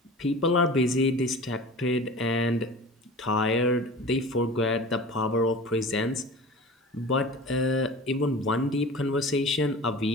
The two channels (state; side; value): normal; both; correlation 0.37